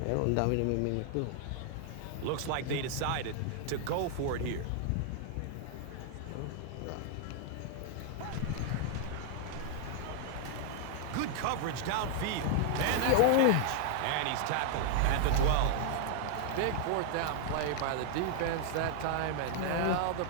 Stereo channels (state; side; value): different; both; correlation 0.00